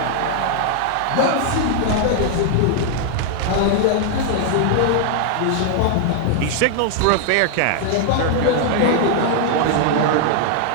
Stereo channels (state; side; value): different; both; correlation 0.00